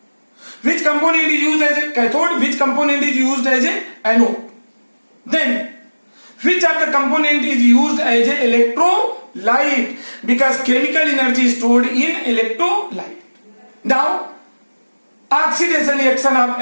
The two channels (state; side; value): inverted; both; correlation -1.00